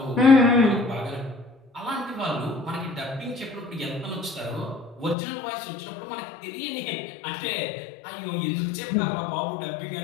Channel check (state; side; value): drops out; right; at 5.2 s